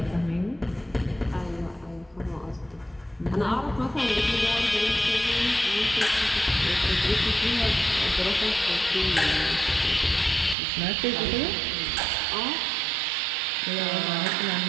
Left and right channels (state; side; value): drops out; left; at 10.6 s